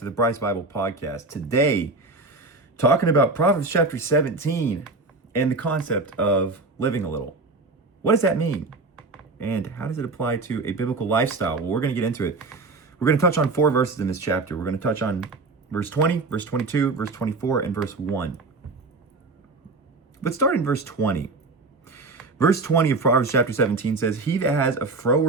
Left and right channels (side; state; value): left; quieter; 3.6 dB